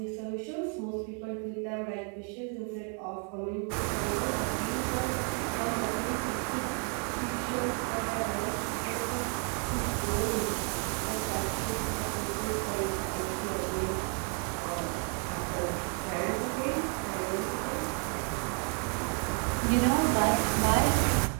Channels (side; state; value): left; quieter; 39.3 dB